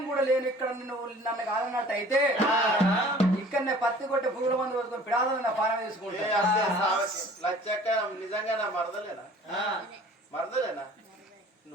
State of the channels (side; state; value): both; normal; correlation 0.49